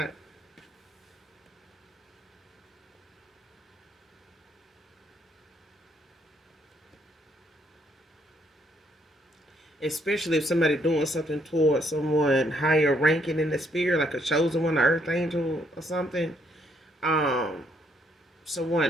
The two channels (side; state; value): both; normal; correlation 0.70